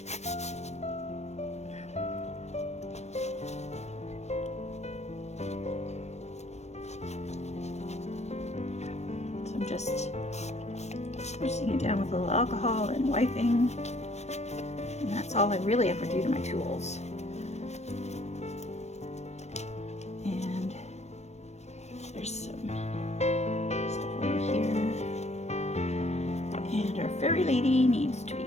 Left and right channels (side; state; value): right; late; 0.32 ms